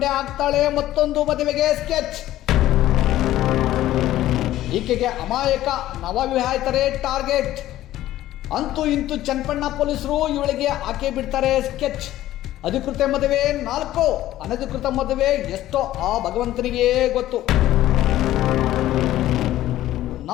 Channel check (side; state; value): right; quieter; 14.2 dB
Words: ಆಗ್ತಾಳೆ ಮತ್ತೊಂದು ಮದುವೆಗೆ ಸ್ಕೆಚ್. ಈಕೆಗೆ ಅಮಾಯಕ ನವವಿವಾಹಿತರೇ ಟಾರ್ಗೆಟ್, ಅಂತೂ ಇಂತೂ ಚನ್ನಪಣ್ಣ ಪೊಲೀಸರು ಇವಳಿಗೆ ಹಾಕಿ ಬಿಡ್ತಾರೆ ಸ್ಕೆಚ್. ಅಧಿಕೃತ ಮದುವೆ 4, ಅನಧಿಕೃತ ಮದುವೆ ಎಷ್ಟೋ ಆ ಭಗವಂತನಿಗೆ ಗೊತ್ತು.